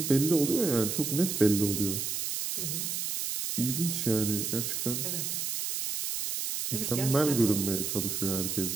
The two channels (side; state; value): right; noise; hiss, 2 dB below the sound